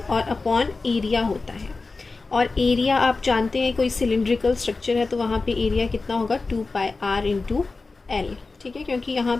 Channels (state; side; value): quieter; right; 3.8 dB